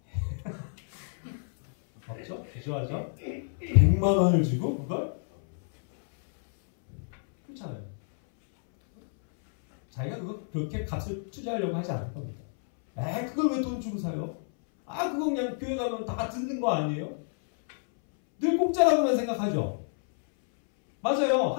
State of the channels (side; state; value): right; silent; 59 dB below the other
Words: 없죠? 주저하죠? 100만 원을 주고 그걸? 그렇잖아요. 자기가 그렇게 값을 투자하려고 하지 않을 겁니다. 그걸 왜 돈 주고 사요? 그거 그냥 교회 가면 다 듣는 거 아니에요? 늘 공짜라고만 생각하죠? 맞아요.